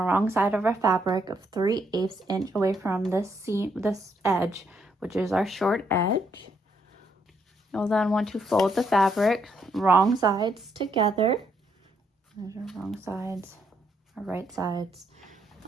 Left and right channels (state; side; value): normal; both; correlation 0.74